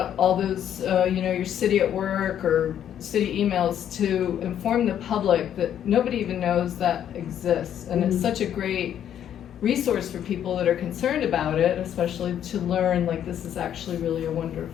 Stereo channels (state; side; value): quieter; right; 10.0 dB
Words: all those, your city at work or city emails to inform the public that nobody even knows that exists, and it's such a great resource for people that are concerned about it, especially to learn like this is actually really a